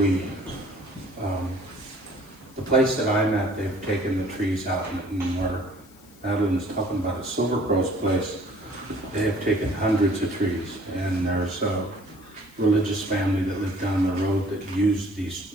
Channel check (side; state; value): left; noise; hiss, 26 dB below the sound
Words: the place that I'm at, they've taken the trees out, and where Madeline's talking about a Silver Crow's place, they have taken hundreds of trees, and there's a religious family that lived down the road that used these